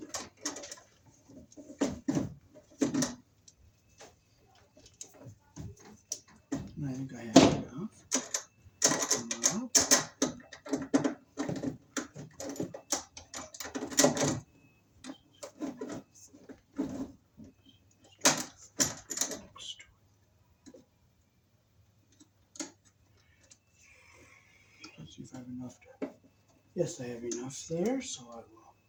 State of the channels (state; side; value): identical; both; correlation 1.00